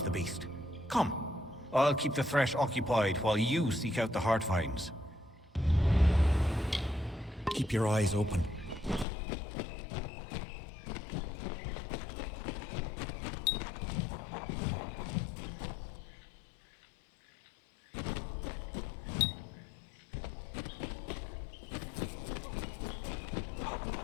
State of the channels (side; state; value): right; drops out; at 9.1 s